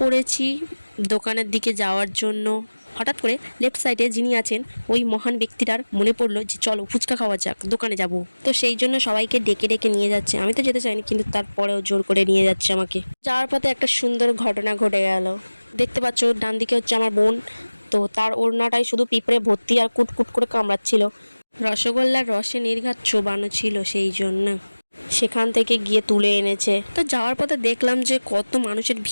পড়েছি দোকানের দিকে যাওয়ার জন্য। হঠাৎ করে লেফট সাইডে যিনি আছেন ওই মহান ব্যক্তিটার মনে পড়লো যে চলো ফুচকা খাওয়া যাক, দোকানে যাব। তো সেই জন্য সবাইকে ডেকে ডেকে নিয়ে যাচ্ছে। আমি তো যেতে চাইনি, কিন্তু তারপরেও জোর করে নিয়ে যাচ্ছে আমাকে। যাওয়ার পথে একটা সুন্দর ঘটনা ঘটে গেল। দেখতে পাচ্ছ ডান দিকে হচ্ছে আমার বোন, তো তার ওড়নাটাই শুধু পিঁপড়ে ভর্তি আর কুটকুট করে কামড়াচ্ছিল। রসগোল্লার রসে নির্ঘাত চোবানো ছিল, সেই জন্য সেখান থেকে গিয়ে তুলে এনেছে। তো যাওয়ার পথে দেখলাম যে কত মানুষের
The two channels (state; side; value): inverted; both; correlation -1.00